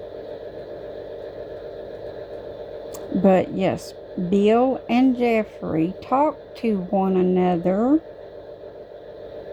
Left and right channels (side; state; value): both; identical; correlation 1.00